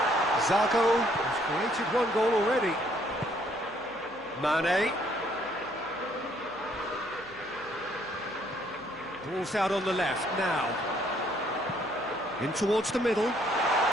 Zago has created one goal already. Mane. Ball's out on the left now. In towards the middle.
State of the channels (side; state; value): left; noise; hum, 29 dB below the sound